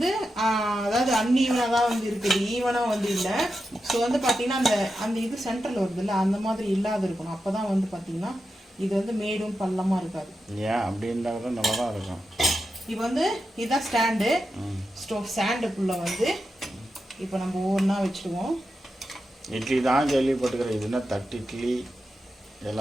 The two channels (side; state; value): both; normal; correlation 0.89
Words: அதாவது அன்ஈவனாக தான் வந்து இருக்குது, ஈவனாக வந்து இல்லை. ஸோ வந்து பார்த்தீங்கன்னா அந்த இது சென்டரில் வருது இல்லை, அந்த மாதிரி இல்லாத இருக்கணும். அப்போ தான் வந்து பார்த்தீங்கன்னா இது வந்து மேடும் பள்ளமாக இருக்காது. ஏன் அப்படி இருந்தால் கூட நல்லா தான் இருக்கும். இப்போ வந்து இதுதான் ஸ்டாண்டு. ஸ்டாண்டுக்குள்ள வந்து இப்போ நம்ம ஒவ்வொன்றா வச்சுடுவோம். இட்லி தான் கேள்விப்பட்டுக்கிறேன், இதுனா தட்டு இட்லி